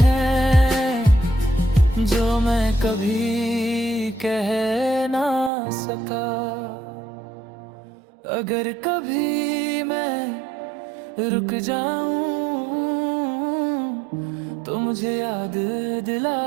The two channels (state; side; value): drops out; left; at 5.5 s